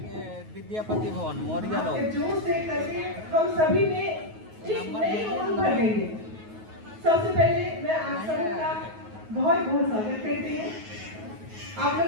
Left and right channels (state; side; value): late; left; 9.3 ms